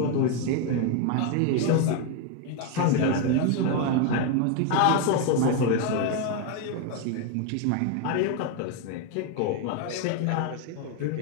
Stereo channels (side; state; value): both; different; correlation 0.01